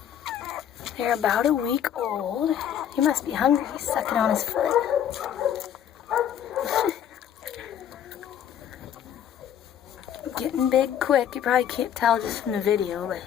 they're about a week old. He must be hungry. He's sucking on his foot. Getting big quick. You probably can't tell just from the video, but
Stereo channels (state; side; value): quieter; right; 9.7 dB